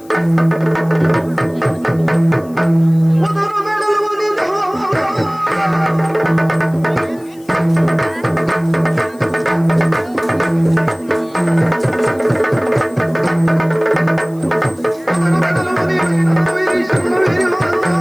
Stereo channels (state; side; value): noise; left; hiss, 27 dB below the sound